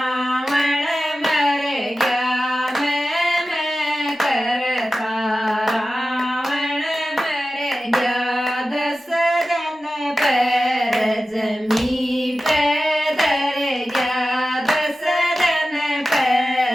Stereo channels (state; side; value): normal; both; correlation 0.94